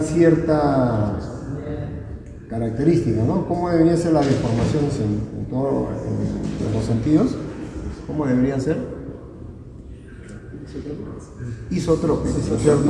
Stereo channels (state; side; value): identical; both; correlation 1.00